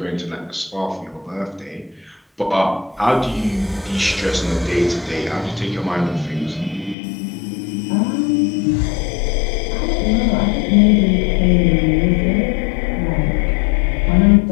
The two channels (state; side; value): drops out; right; at 7.0 s